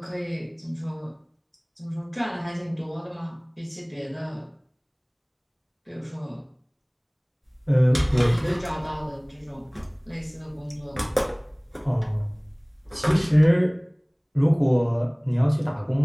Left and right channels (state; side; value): identical; both; correlation 1.00